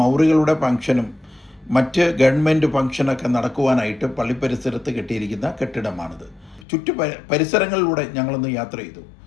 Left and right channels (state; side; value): drops out; right; at 6.7 s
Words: മൗറികളുടെ ഫംഗ്ഷനും മറ്റ് ഗവൺമെൻറ് ഫംഗ്ഷനൊക്കെ നടക്കുവാനായിട്ട് പള്ളിപ്പരിസരത്ത് കെട്ടിയിരിക്കുന്ന കെട്ടിടമാണിത്. പരിസരങ്ങളിലൂടെ ഞങ്ങളൊന്ന് യാത്ര ചെയ്തു.